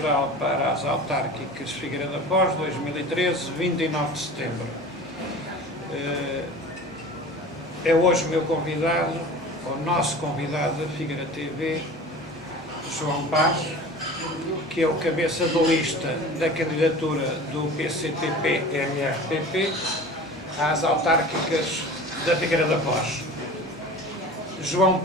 para as autárquicas Figueira da Foz, 2013, 29 de setembro. É hoje o meu convidado, o nosso convidado da Figueira TV, João Paz, que é o cabeça de lista da candidatura do PCTP-MRPP às autárquicas da Figueira da Foz. João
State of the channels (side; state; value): both; normal; correlation 0.38